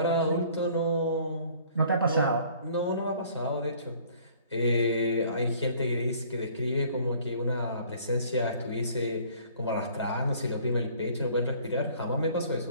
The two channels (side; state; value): both; inverted; correlation -0.55